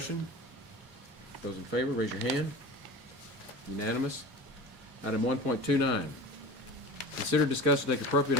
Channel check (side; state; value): both; normal; correlation 0.34